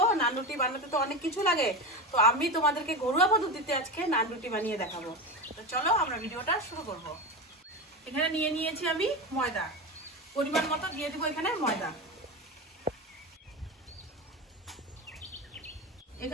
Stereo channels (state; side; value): normal; both; correlation 0.21